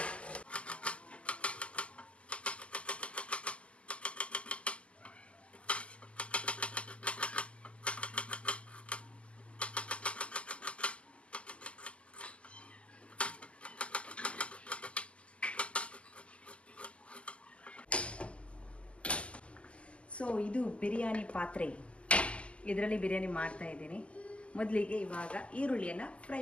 ಸೊ ಇದು ಬಿರಿಯಾನಿ ಪಾತ್ರೆ, ಇದರಲ್ಲಿ ಬಿರಿಯಾನಿ ಮಾಡ್ತಾ ಇದ್ದೀನಿ. ಮೊದಲಿಗೆ ಇವಾಗ ಈರುಳ್ಳಿಯನ್ನು ಫ್ರೈ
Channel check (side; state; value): right; late; 0.057 ms